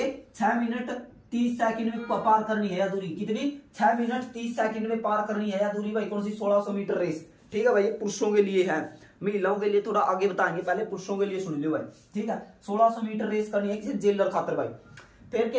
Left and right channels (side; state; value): both; identical; correlation 1.00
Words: 6 मिनट 30 सेकंड में पार करनी है या दूरी। कितनी, 6 मिनट 30 सेकंड में पार करनी है या दूरी भाई। कौन सी, 1600 मीटर रेस, ठीक है भाई। ये पुरुषों के लिए है, महिलाओं के लिए थोड़ा आगे बताएंगे। पहले पुरुषों के लिए सुन लो भाई, ठीक है। 1600 मीटर रेस करनी है किसी जेलर खातर भाई। फिर